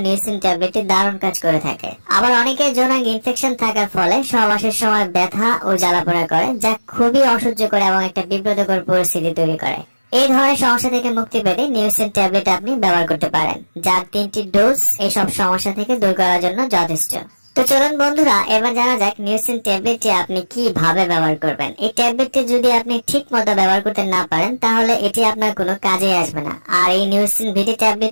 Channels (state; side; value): inverted; both; correlation -1.00